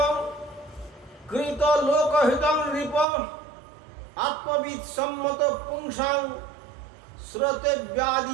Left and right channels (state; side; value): drops out; left; at 3.1 s